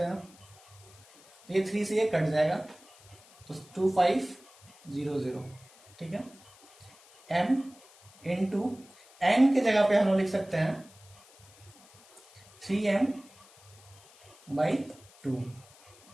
हैं। तो ये 3 से ये कट जाएगा, तो 2500। ठीक है, m इंटू n के जगह पे हम लोग लिख सकते हैं 3m बाई 2।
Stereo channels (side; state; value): left; noise; hiss, 25 dB below the sound